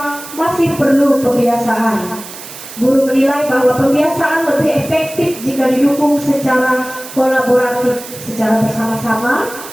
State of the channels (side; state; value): right; noise; hiss, 14 dB below the sound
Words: masih perlu pembiasaan. Guru menilai bahwa pembiasaan lebih efektif jika didukung secara kolaboratif, secara bersama-sama.